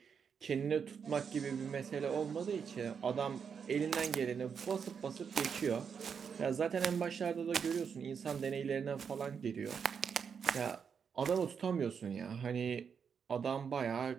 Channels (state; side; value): quieter; left; 6.7 dB